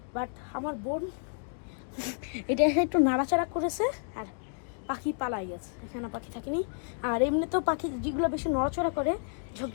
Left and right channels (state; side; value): silent; right; 57 dB below the other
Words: বাট আমার বোন এটা একটু নাড়াচাড়া করেছে আর পাখি পালাই গেছে, এখানে পাখি থাকেনি। আর এমনিতেও পাখি যেগুলো বেশি নড়াচড়া করে সব